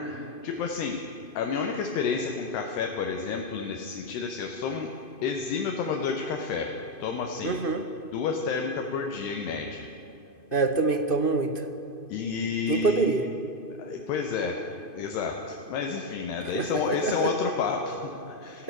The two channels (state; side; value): late; right; 2.5 ms